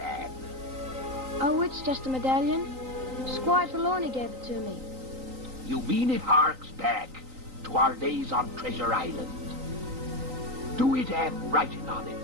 Oh, it's just a medallion. Squire Trelawney gave it to me. You mean it harks back to our days on Treasure Island? Do it have writing on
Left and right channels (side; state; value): left; late; 3.9 ms